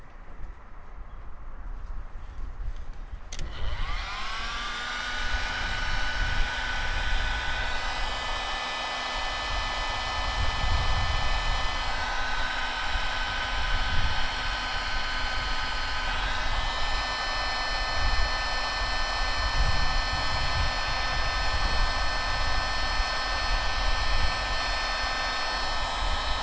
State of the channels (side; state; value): both; identical; correlation 1.00